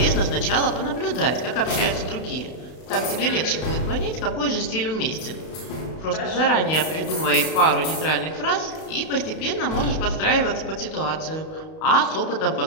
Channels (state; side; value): late; right; 32 ms